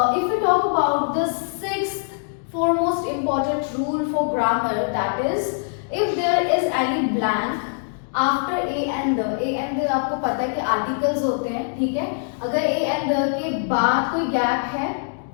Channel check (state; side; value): silent; right; digital silence